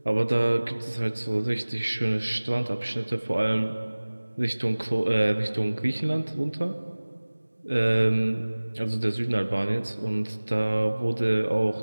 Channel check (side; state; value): both; inverted; correlation -1.00